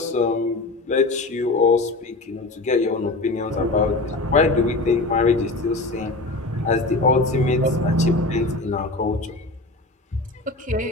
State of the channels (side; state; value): right; quieter; 3.0 dB